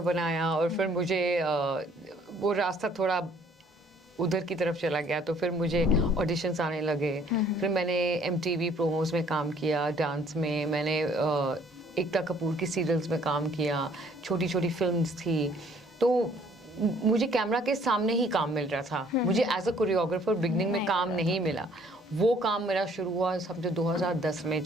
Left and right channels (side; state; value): both; normal; correlation 0.60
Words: बनाया और फिर मुझे वो रास्ता थोड़ा उधर की तरफ चला गया, तो फिर मुझे ऑडिशंस आने लगे। फिर मैंने MTV प्रोमोस में काम किया, डांस में मैंने एकता कपूर की सीरियल्स में काम किया, छोटी छोटी फिल्म्स थी, तो मुझे कैमरा के सामने ही काम मिल रहा था। मुझे एज अ कोरियोग्राफर बिगनिंग में काम नहीं मिला। वो काम मेरा शुरू हुआ समझो 2010 में,